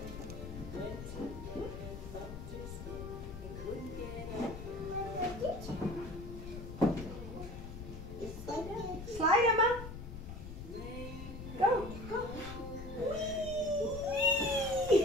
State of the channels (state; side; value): noise; left; rumble, 10 dB below the sound